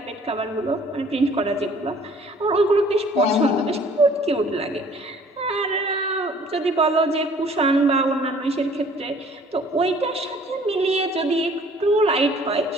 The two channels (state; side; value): normal; both; correlation 0.55